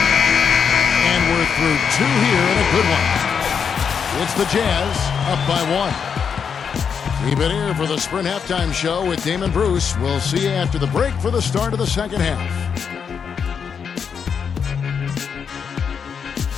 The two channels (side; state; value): right; quieter; 6.8 dB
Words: And we're through 2 here and a good one. It's the Jazz up by 1. Keep it here for the Sprint Halftime Show with Damon Bruce. We'll see you after the break for the start of the second half.